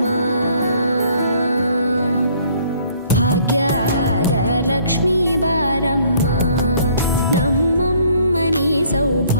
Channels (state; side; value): inverted; both; correlation -0.61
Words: ಭಾಗ್ಯದ ಲಕ್ಷ್ಮೀ ಬಾರಮ್ಮ, ನಮ್ಮಮ್ಮನಿ